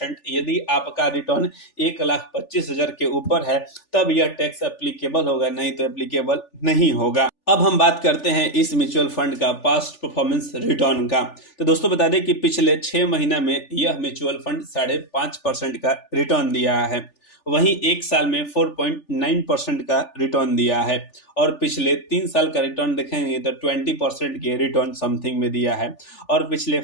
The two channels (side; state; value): right; late; 3.4 ms